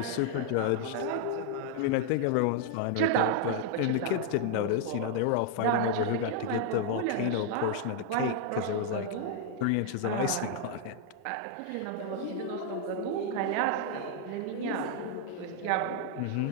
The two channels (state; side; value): different; both; correlation 0.00